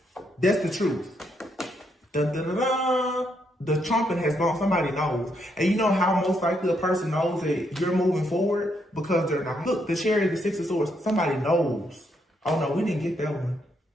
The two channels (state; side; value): normal; both; correlation 0.76